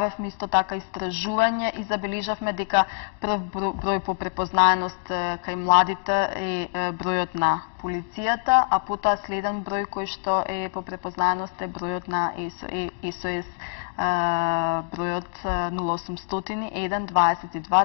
исто така истражување и забележавме дека прв број по препознаеност кај младите е бројот на полицијата, а потоа следен број кој што е по препознаеност е бројот на СОС, бројот 0800 1 22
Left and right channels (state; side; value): silent; right; 62 dB below the other